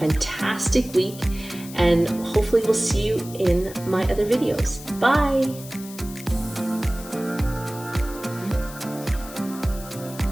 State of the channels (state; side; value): noise; left; hiss, 16 dB below the sound